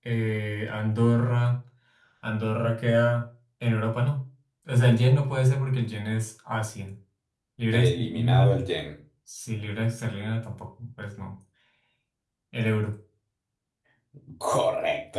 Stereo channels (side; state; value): both; identical; correlation 1.00